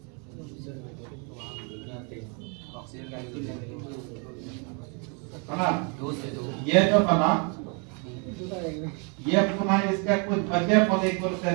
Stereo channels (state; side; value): quieter; left; 35.5 dB